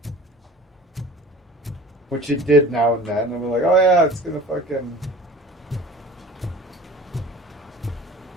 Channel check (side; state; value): both; normal; correlation 0.42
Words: Which it did now and then. And we're like, oh yeah, it's gonna fucking...